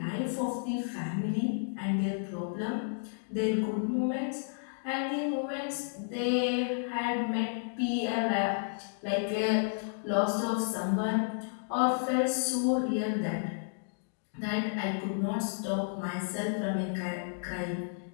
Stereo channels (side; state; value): right; silent; digital silence